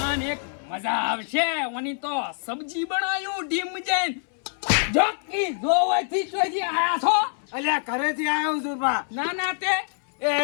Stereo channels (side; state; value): right; silent; 62 dB below the other